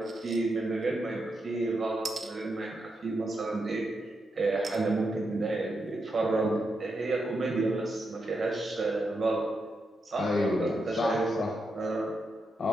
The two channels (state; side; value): normal; both; correlation 0.84